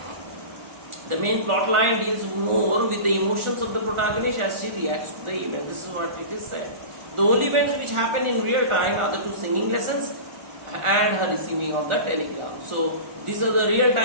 The main plot line deals more with the emotions of the protagonist as she reacts to the event. This is what it is said. The only events which happen in real time are the 2 singing lessons and her receiving of the telegram. So these are the real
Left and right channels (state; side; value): late; left; 1.4 ms